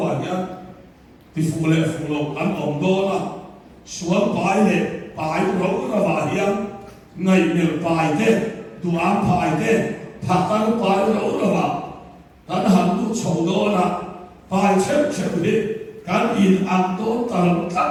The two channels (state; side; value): identical; both; correlation 1.00